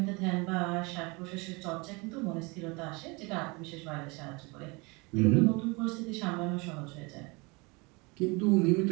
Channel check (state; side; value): quieter; left; 27.6 dB